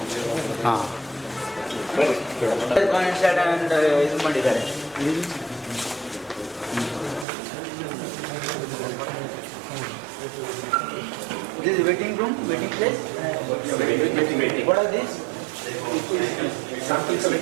ಹಾಂ, ಇದು ಮಾಡಿದ್ದಾರೆ. This is waiting room, waiting place. What are these? sample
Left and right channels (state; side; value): drops out; left; at 7.2 s